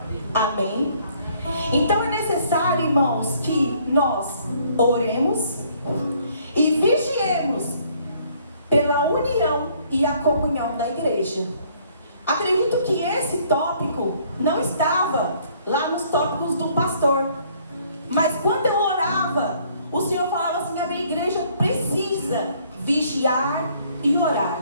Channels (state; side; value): inverted; both; correlation -0.63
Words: Amém? Então é necessário, irmãos, que nós oremos e vigiemos pela união e a comunhão da igreja. Acredito que esse tópico não estava lá nos tópicos do pastor. Mas quando eu orava, o Senhor falava assim: a minha igreja precisa vigiar e orar.